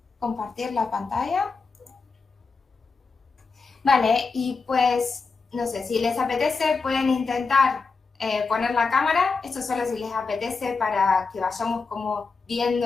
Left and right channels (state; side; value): quieter; right; 4.5 dB